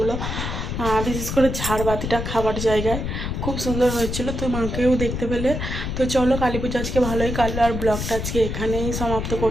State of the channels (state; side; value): noise; left; rumble, 4 dB below the sound